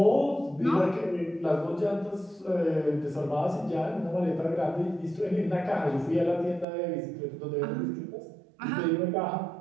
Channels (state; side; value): drops out; left; at 6.7 s